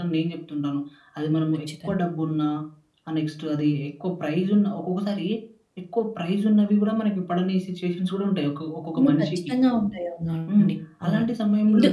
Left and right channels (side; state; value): both; identical; correlation 1.00